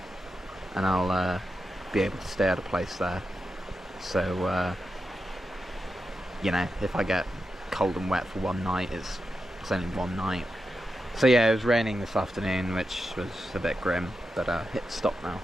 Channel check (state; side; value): normal; both; correlation 0.89